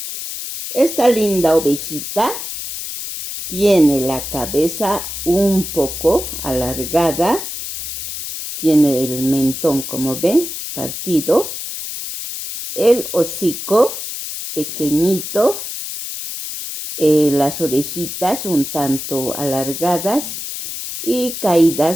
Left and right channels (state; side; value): noise; left; hiss, 7 dB below the sound